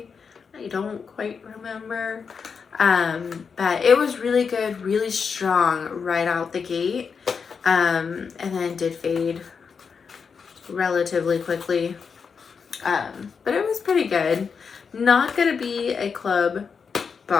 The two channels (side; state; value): right; quieter; 5.9 dB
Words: I don't quite remember. But it was really good, really strong right out the gate. And then did fade relatively quickly. But it was pretty good. Not gonna be a club